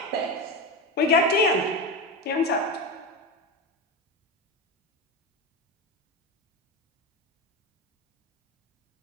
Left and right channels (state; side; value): normal; both; correlation 0.19